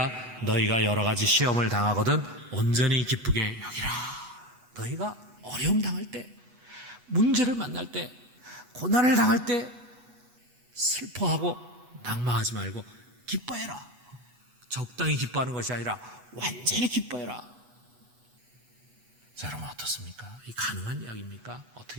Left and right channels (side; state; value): left; late; 8.2 ms